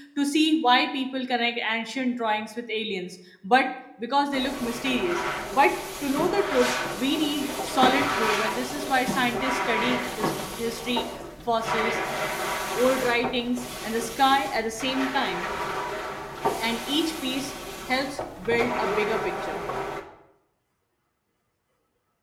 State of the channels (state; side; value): identical; both; correlation 1.00